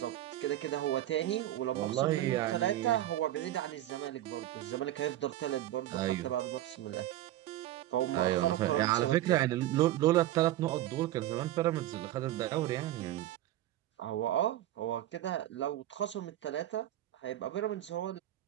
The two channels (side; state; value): left; quieter; 13.8 dB